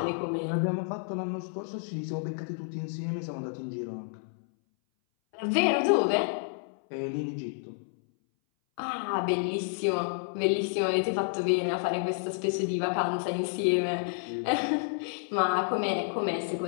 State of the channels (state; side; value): silent; right; 58 dB below the other